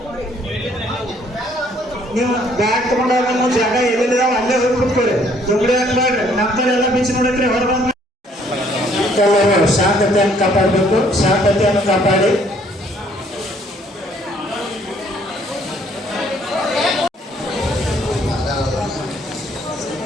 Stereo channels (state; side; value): normal; both; correlation 0.63